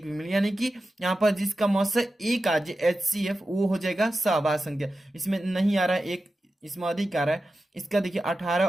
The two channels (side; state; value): both; normal; correlation 0.92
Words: भी मिल, यानी कि यहाँ पर जिसका मौसा एक आ जाए HCF वो हो जाएगा सहअभाज्य संख्या। इसमें नहीं आ रहा है एक, इसमें अधिक आ रहा है। इसका देखिए 18